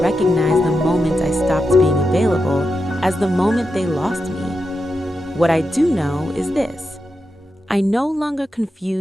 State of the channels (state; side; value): normal; both; correlation 0.88